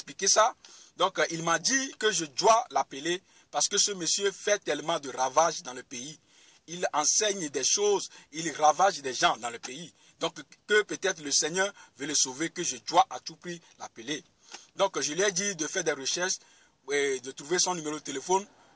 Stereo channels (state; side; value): identical; both; correlation 1.00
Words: ça. Donc, il m'a dit que je dois l'appeler parce que ce monsieur fait tellement de ravages dans le pays. Il enseigne des choses, il ravage des gens dans le pays. Donc, que peut-être le Seigneur veut le sauver, que je dois à tout prix l'appeler. Donc, je lui ai dit de faire des recherches, et de trouver son numéro de téléphone